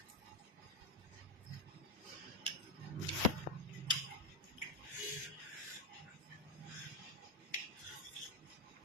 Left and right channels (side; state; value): both; normal; correlation 0.03